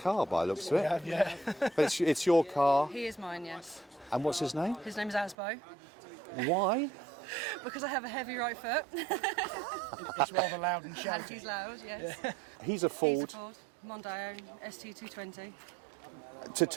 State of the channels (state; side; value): drops out; left; at 5.4 s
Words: by the looks of it. Yeah. But it's your car. He is mine, yes. And what's his name? His name is Asbo. Why? Because I have a heavy right foot. It's rather loud and And shouty. he's loud, yes. He's a Ford. He's a Ford. Mondeo ST220. So